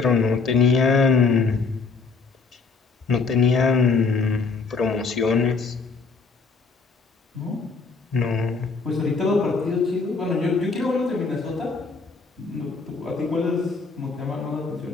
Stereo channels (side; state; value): right; quieter; 4.5 dB